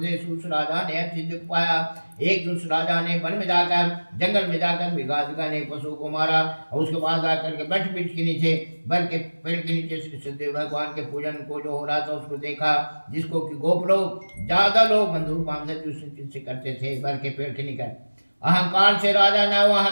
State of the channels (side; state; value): both; inverted; correlation -1.00